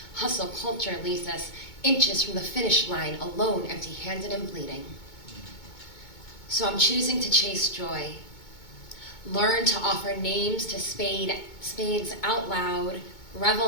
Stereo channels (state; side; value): late; right; 2.2 ms